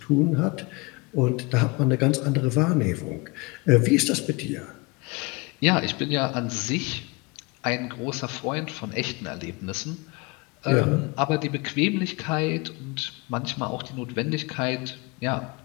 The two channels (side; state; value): right; quieter; 26.7 dB